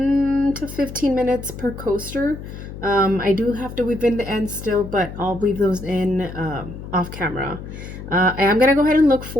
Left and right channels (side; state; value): left; noise; hum, 11 dB below the sound